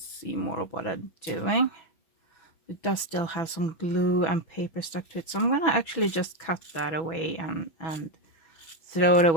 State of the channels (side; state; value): right; late; 6.1 ms